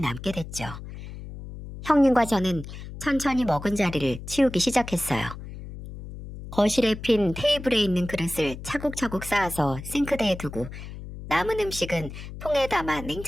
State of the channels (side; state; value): left; noise; hum, 11 dB below the sound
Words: 됐죠. 형님과 저는 천천히 먹은 자리를 치우기 시작했어요. 거실에 핀 테이블에 있는 그릇을 차곡차곡 쌓아서 싱크대에 두고 남은 음식은 통에 담아